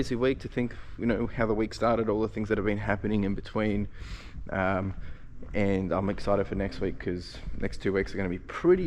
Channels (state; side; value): identical; both; correlation 1.00